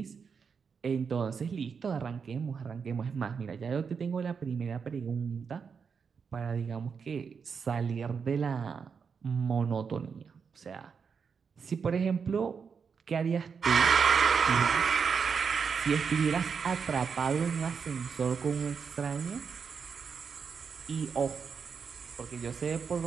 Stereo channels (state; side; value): quieter; left; 6.0 dB